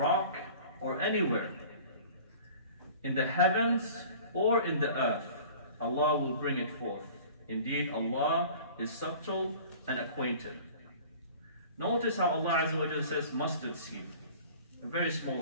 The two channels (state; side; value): inverted; both; correlation -0.44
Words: or anywhere, in the heavens or in the earth, Allah will bring it forth. Indeed, Allah is subtle and acquainted. Notice how Allah Azza wa Jalla says mustard seed, a very